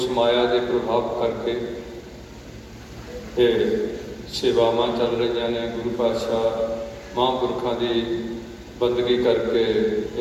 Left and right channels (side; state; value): both; identical; correlation 1.00